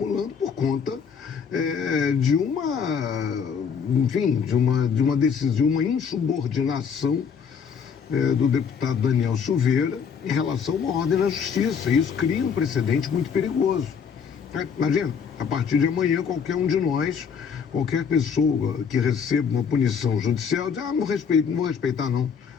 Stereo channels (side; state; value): right; quieter; 6.6 dB